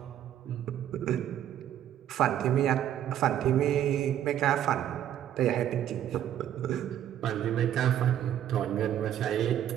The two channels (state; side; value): quieter; left; 10.9 dB